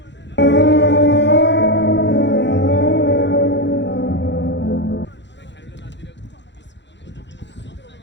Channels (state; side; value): late; right; 0.52 ms